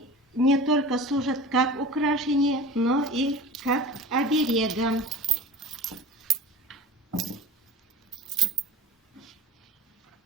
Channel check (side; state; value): both; normal; correlation 0.36